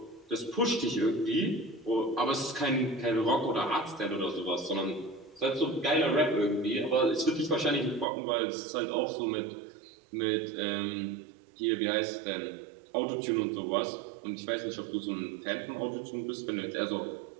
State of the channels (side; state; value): left; drops out; at 8.1 s